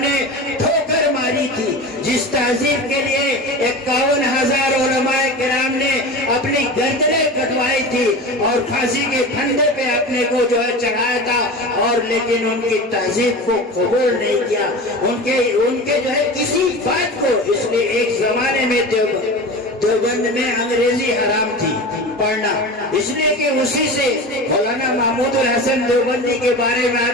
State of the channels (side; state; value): both; normal; correlation 0.31